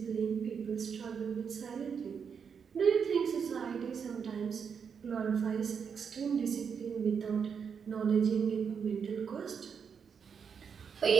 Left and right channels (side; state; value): left; quieter; 6.6 dB